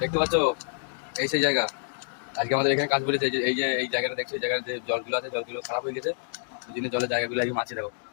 পাচ্ছ, এই সেই জায়গা। আজকে আমাদের এখানে কাজ বলেছে, যে এই জায়গাটা দেখছো, এই জায়গার যে জলগুলো আছে, জলগুলো খারাপ হয়ে গেছে। ওই জন্য জলের জায়গাগুলো আজকে মাছি দেখো।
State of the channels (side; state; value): right; silent; digital silence